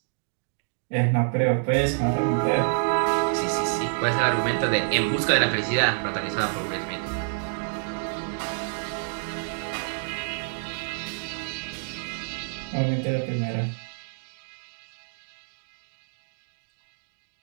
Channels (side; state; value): left; silent; digital silence